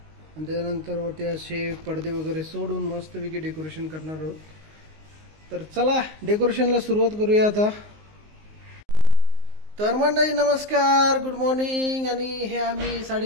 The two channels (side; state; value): left; late; 19 ms